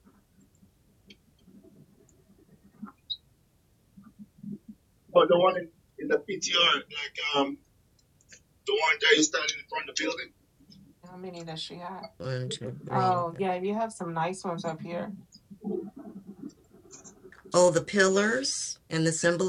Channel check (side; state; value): both; identical; correlation 1.00